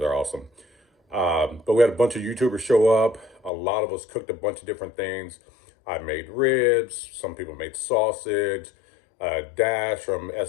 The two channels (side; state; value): right; drops out; at 3.5 s